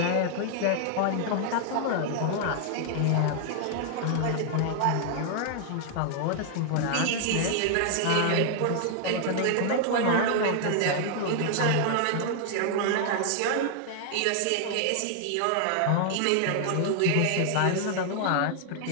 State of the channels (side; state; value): both; different; correlation 0.00